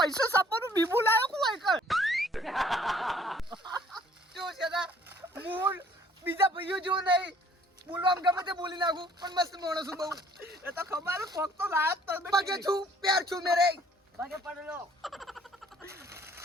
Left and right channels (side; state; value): both; normal; correlation 0.58